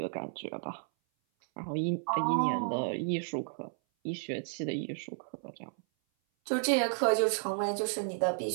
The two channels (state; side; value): silent; left; 56 dB below the other